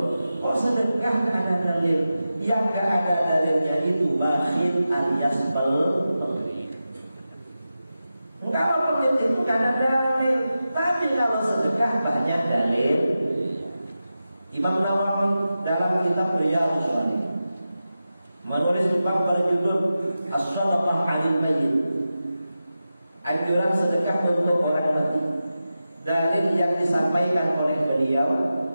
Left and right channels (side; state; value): both; inverted; correlation -0.92